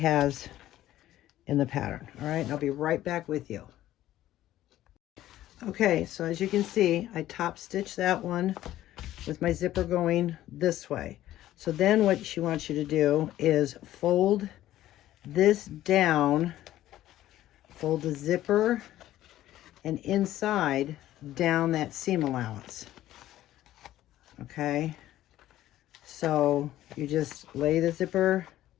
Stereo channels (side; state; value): right; quieter; 13.8 dB